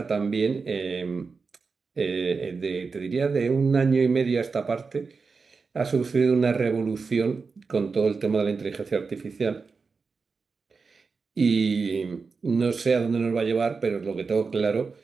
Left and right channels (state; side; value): quieter; left; 4.7 dB